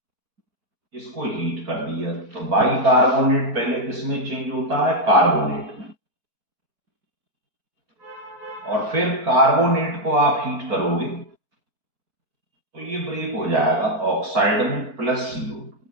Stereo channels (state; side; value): late; left; 4.5 ms